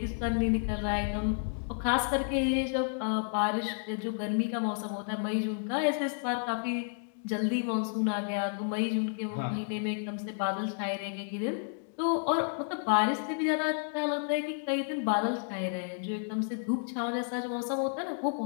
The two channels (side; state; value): right; silent; digital silence